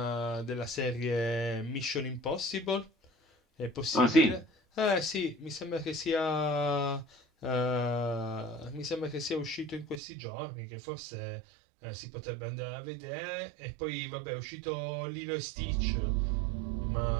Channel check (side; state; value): left; drops out; at 10.0 s